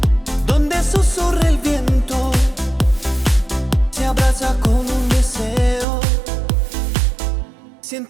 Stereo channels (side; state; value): left; drops out; at 5.9 s